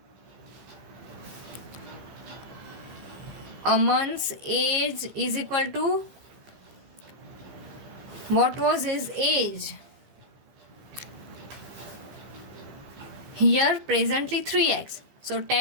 Aman's age is equal to, what was his age? Here presently 3x. So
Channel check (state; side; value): late; left; 15 ms